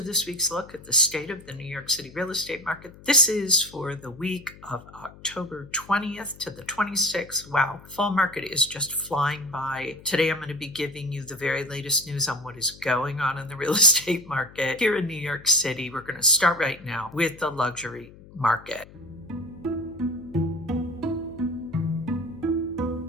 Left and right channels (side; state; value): left; noise; hum, 20 dB below the sound